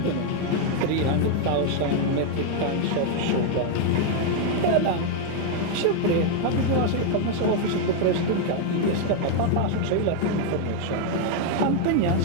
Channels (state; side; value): different; both; correlation 0.00